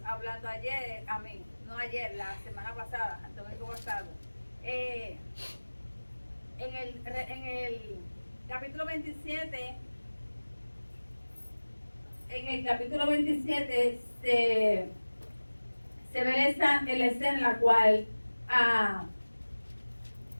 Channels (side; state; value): both; inverted; correlation -1.00